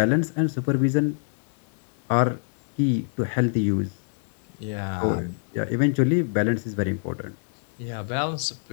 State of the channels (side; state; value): right; silent; digital silence